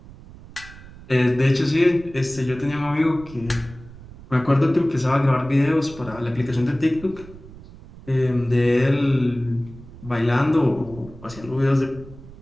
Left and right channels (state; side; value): noise; right; rumble, 18 dB below the sound